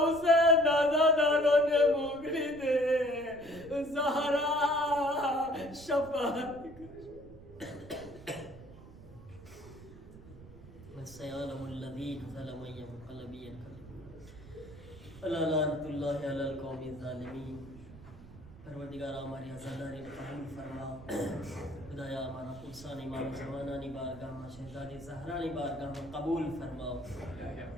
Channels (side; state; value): right; noise; rumble, 18 dB below the sound